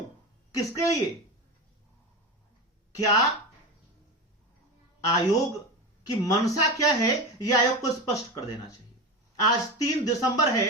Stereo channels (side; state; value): both; normal; correlation 0.23